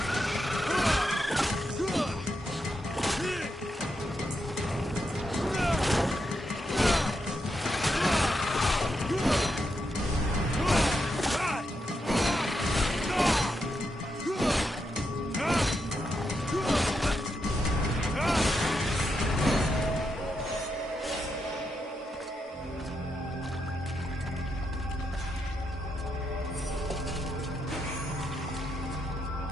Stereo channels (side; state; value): both; normal; correlation 0.83